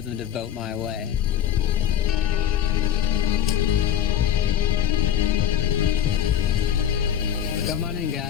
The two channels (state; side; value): quieter; right; 9.9 dB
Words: them to vote my way. Come on in,